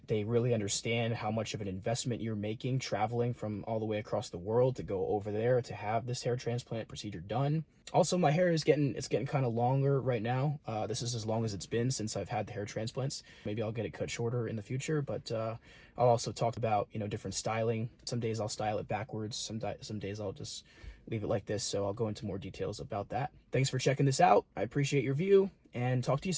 They really understand how much of an investment you're making traveling from all the way across the world to go over there to have this hair transplant procedure done. Also, my hair is getting kind of longer right now. This is as long as it's been since I've had the hair transplants. Maybe I'll get it cut shorter in the future, but I'll also talk about, different styling. Some days I'll style it backwards. Some days I'll just leave it like this. So I'll go into more details about that. Thanks for checking this out. I appreciate your view and talk to you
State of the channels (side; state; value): both; identical; correlation 1.00